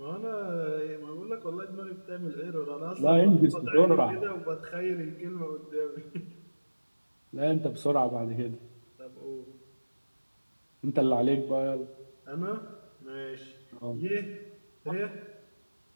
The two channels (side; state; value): both; inverted; correlation -1.00